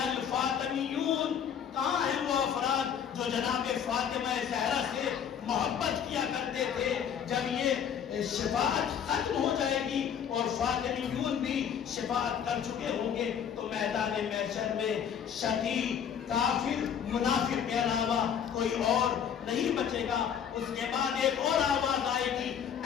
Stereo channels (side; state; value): right; quieter; 8.2 dB